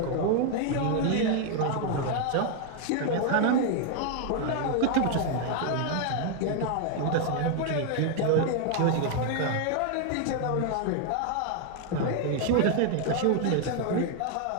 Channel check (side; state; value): both; different; correlation 0.00